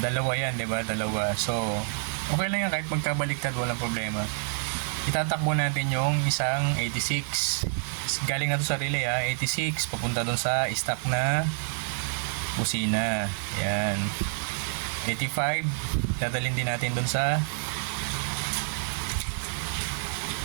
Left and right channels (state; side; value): silent; left; digital silence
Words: dalawa yan, di ba? Dalawa. So, okay lang yan kahit magkabaliktad, walang problema. Itatakbo natin yung isang 86. Galing na to sa relay, 86. Papunta dun sa stock na busina. Yan. 85. Dadalhin din natin dun sa